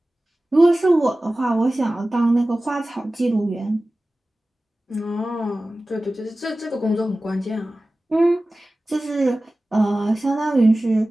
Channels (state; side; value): normal; both; correlation 0.96